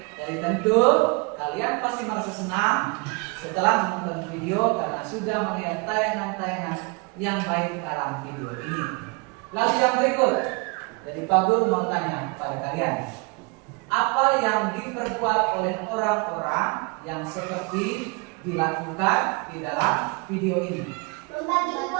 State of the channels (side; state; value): left; quieter; 29.7 dB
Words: Jadi tentu kalian pasti merasa senang setelah menonton video karena sudah melihat tayangan-tayangan yang baik dalam video ini. Lalu yang berikut, jadi Pak Guru mau tanya pada kalian, apa yang diperbuat oleh orang-orang yang seperti dilakukan di dalam video ini? Membagi